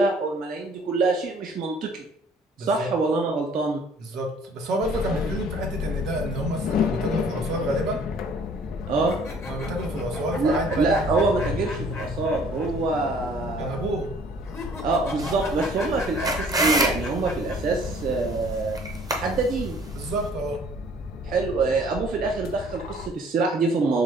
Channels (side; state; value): both; normal; correlation 0.56